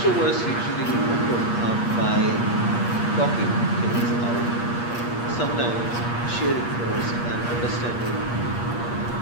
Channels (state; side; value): late; right; 8.4 ms